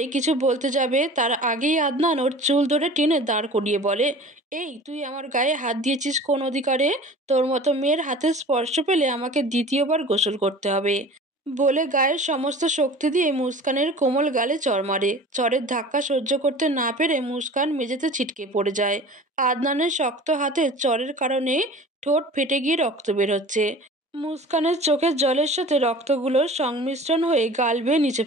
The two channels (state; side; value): normal; both; correlation 0.41